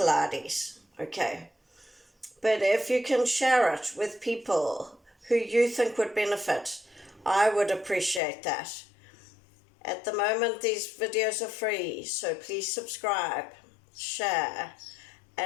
okay? But if you can share it with people who you think would benefit, I would appreciate that. At the moment, these videos are free, so please subscribe, share,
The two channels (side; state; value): right; drops out; at 8.2 s